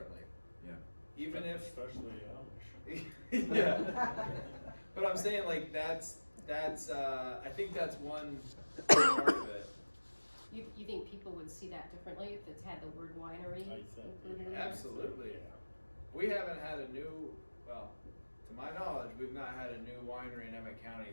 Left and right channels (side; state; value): both; inverted; correlation -1.00